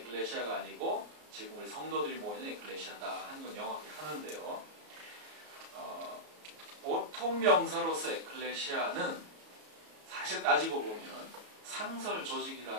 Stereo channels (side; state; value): left; late; 33 ms